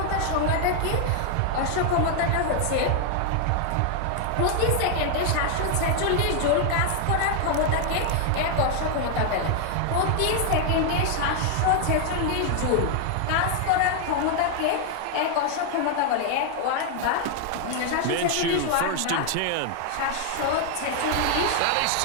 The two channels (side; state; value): both; different; correlation 0.00